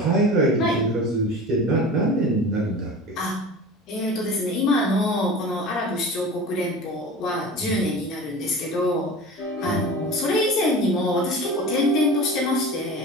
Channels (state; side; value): normal; both; correlation 0.35